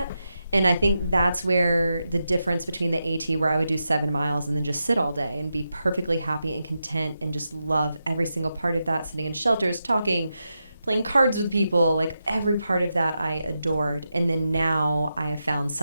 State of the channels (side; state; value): both; inverted; correlation -0.88